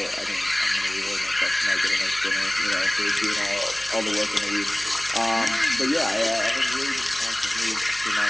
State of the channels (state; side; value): noise; left; hum, 24 dB below the sound